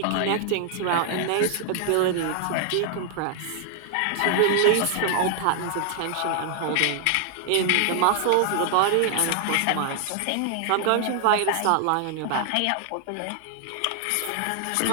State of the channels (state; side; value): different; both; correlation 0.00